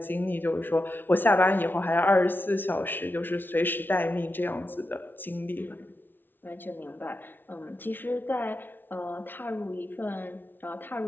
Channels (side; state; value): right; late; 0.096 ms